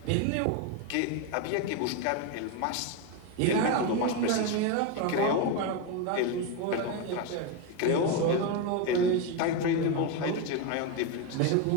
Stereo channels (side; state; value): both; different; correlation 0.03